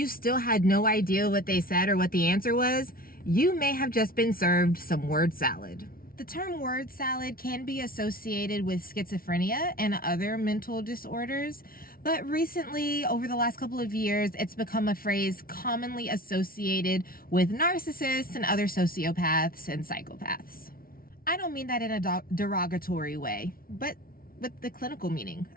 still had no idea what they said or what the answer was, you may have just been served some word salad. The term word salad can be associated with schizophrenia and other mental disorders, but recently, over the last couple of years, it's become a phrase commonly associated with narcissists and other sociopaths and psychopaths. I don't mean that in a derogatory way, but with the clinical meaning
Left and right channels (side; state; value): right; late; 0.43 ms